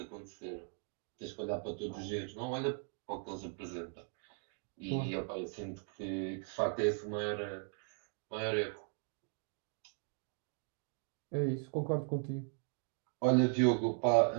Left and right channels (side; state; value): left; silent; 52 dB below the other